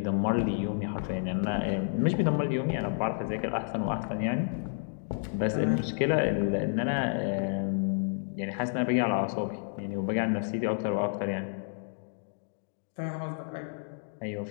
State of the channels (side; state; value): right; silent; digital silence